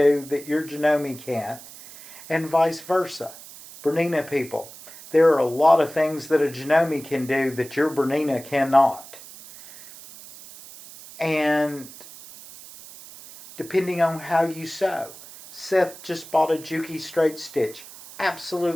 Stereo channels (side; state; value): right; noise; hiss, 17 dB below the sound